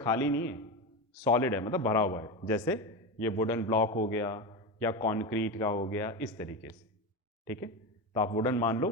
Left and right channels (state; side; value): normal; both; correlation 0.19